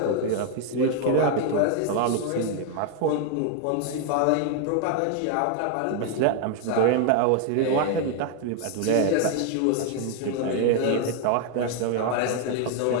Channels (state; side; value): different; both; correlation 0.00